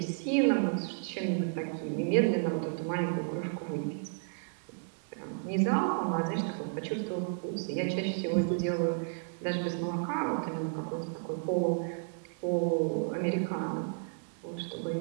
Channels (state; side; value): silent; left; digital silence